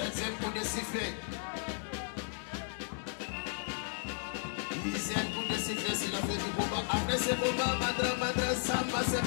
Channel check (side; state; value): right; silent; digital silence